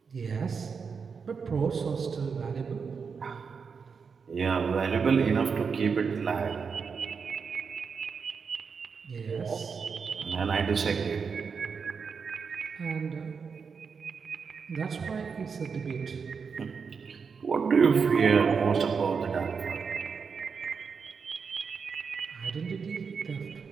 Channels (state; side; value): quieter; left; 5.7 dB